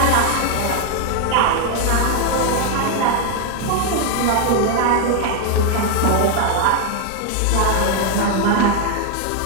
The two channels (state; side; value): different; both; correlation 0.00